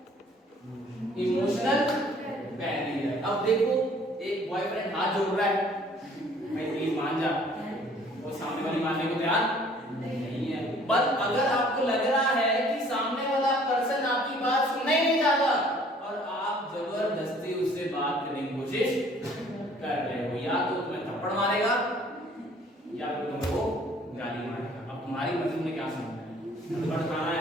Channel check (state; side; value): normal; both; correlation 0.56